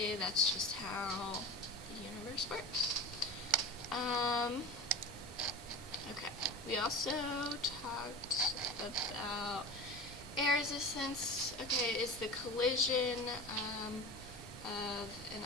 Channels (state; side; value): normal; both; correlation 0.32